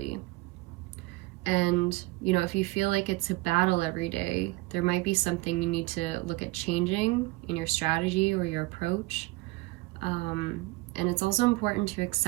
And, you know, if you feel like it's a battle every day, there might be something you need to look at changing in your strategy or your approach. And it's also important to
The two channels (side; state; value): left; quieter; 22.3 dB